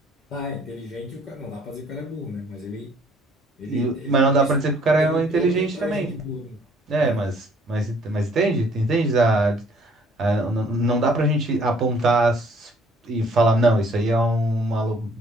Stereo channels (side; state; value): both; normal; correlation 0.60